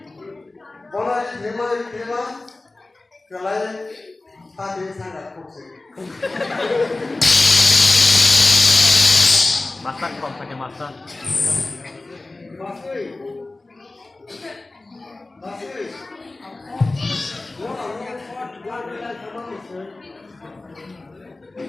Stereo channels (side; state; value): right; quieter; 3.1 dB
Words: Bola terima, kelai hati sangat fokus. masak kok pakai masak